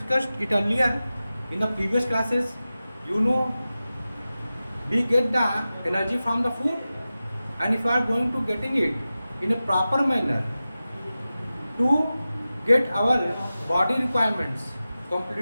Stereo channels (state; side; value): inverted; both; correlation -0.94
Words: it earlier in the previous classes. You know we get the energy from the food, and if we are going to getting it in a proper manner to get our body requirements